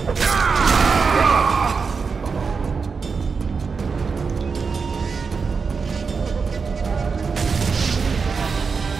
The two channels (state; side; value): quieter; left; 5.1 dB